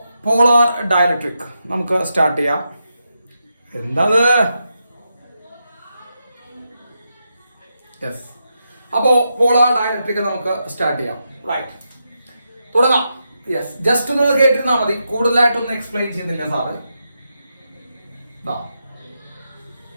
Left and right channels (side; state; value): both; inverted; correlation -0.85